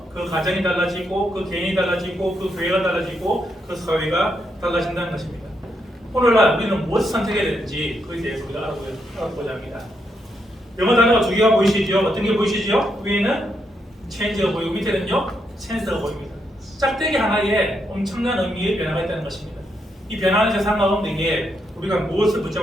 그 가정이 달라지고 그 개인이 달라지고 그 교회가 달라지고 그 사회가 달라진다는 것입니다. 오늘날 우리는 무엇을 선택해야 되는지 그에 대해서 우리가 알아보고자 합니다. 영어 단어가 두 개가 보이시죠? 어떤 게 보이시죠? 위에는 change가 보이고 밑에는요 chance가 보입니다. 짝대기 하나에 엄청난 의미의 변화가 있다는 것입니다. 이 변화하는 세상 가운데 우리가 무엇을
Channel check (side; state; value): both; normal; correlation 0.79